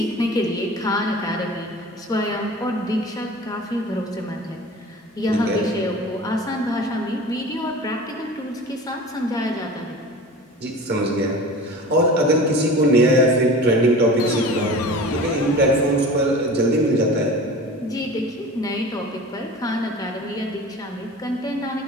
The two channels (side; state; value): both; normal; correlation 0.37